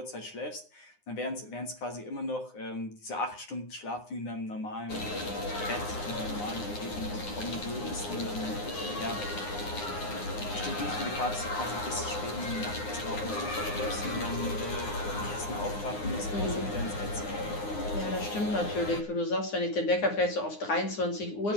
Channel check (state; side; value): late; right; 9.7 ms